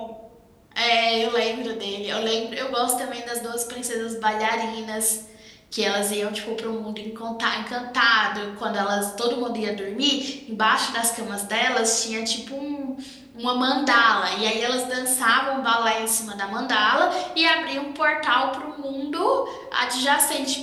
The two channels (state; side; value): identical; both; correlation 1.00